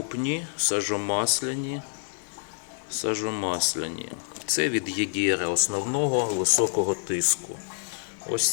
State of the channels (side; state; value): right; silent; digital silence